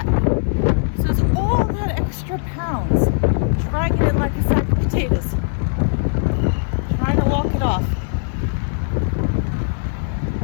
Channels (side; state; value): right; silent; digital silence